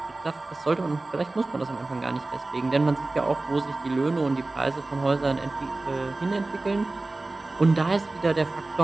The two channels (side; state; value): left; quieter; 3.1 dB